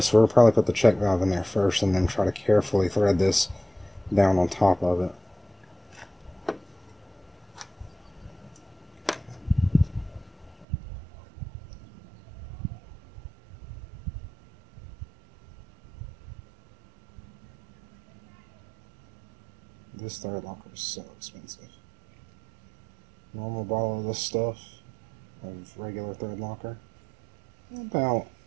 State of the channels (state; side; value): drops out; left; at 10.7 s